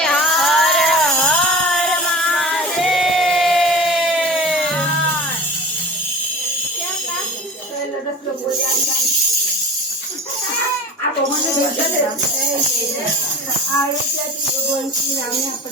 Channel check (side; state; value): both; normal; correlation 0.36